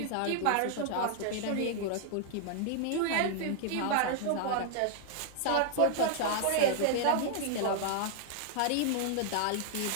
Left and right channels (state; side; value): different; both; correlation 0.00